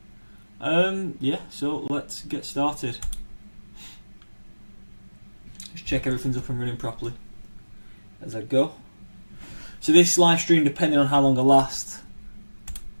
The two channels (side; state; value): both; inverted; correlation -1.00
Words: Yeah, so let's get started. Just check everything's up and running properly as I go. So this live stream, depending on how long I last,